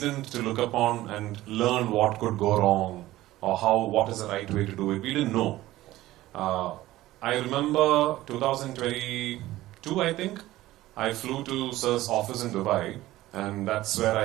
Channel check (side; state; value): left; quieter; 16.3 dB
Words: to look upon and learn what could go wrong or what is the right way to do it. We didn't know. I remember 2022, I think, I flew to Sir's office in Dubai, and that's where